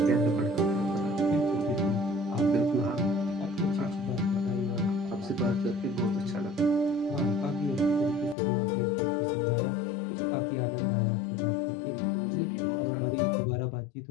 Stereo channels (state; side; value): drops out; right; at 8.3 s